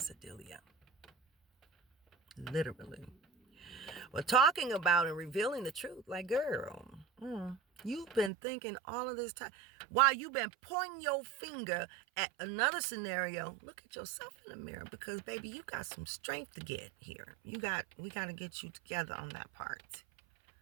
Literally. Well, talking about and revealing the truth. Like, girl, you've been thinking all of this time. While you've been pointing your finger at another scenario, look at yourself in the mirror. Because, baby, you got some strength to get here. We got to get you together on that part.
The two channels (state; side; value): drops out; left; at 8.3 s